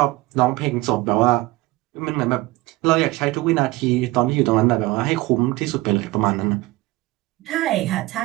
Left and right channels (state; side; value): quieter; left; 20.1 dB